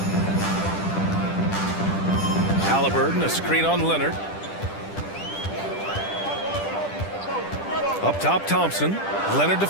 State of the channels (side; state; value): right; late; 10 ms